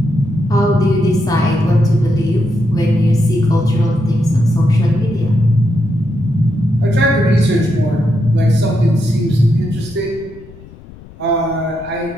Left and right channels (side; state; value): left; noise; rumble, 20 dB below the sound